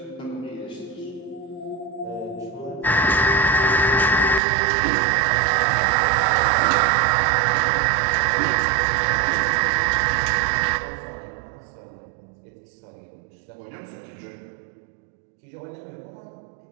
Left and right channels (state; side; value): drops out; left; at 4.4 s